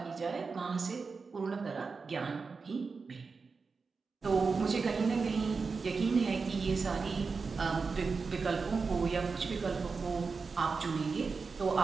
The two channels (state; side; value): quieter; left; 4.7 dB